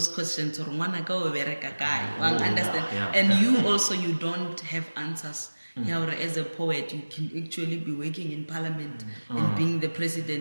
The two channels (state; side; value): inverted; both; correlation -1.00